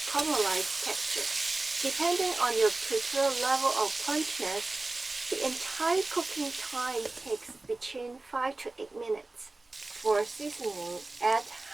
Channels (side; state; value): left; quieter; 3.2 dB